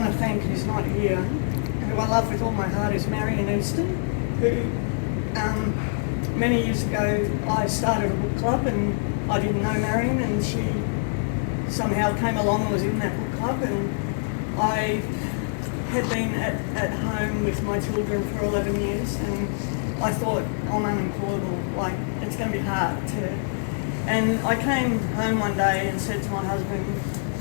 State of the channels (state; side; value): silent; right; digital silence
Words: to thank who's not here, who I love with all my heart, is Marion Easton, who many years ago I started a book club, and I didn't know Marion, and she somehow came along and was in that book club, and I had been at home with my children for 11 years, and I thought, I'm unemployable, like it's going to be hard to... And I came home one day and said to my husband,